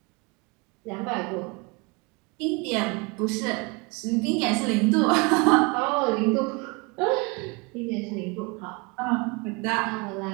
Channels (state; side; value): quieter; left; 28.7 dB